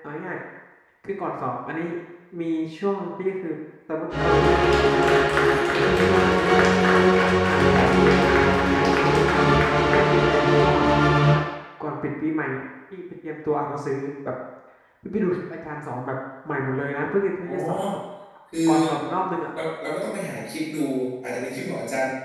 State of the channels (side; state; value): both; identical; correlation 1.00